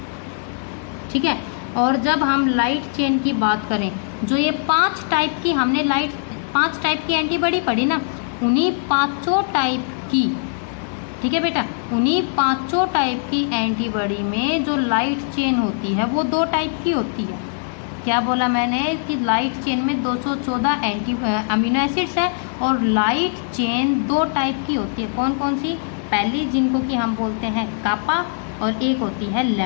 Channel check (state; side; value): silent; right; digital silence